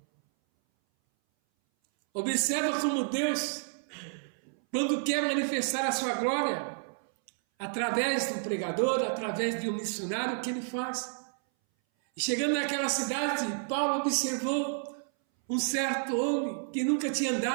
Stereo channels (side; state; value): left; silent; 58 dB below the other